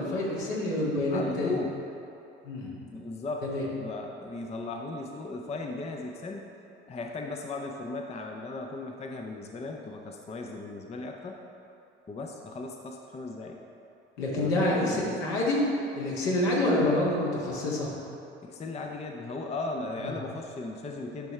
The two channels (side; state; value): both; normal; correlation 0.39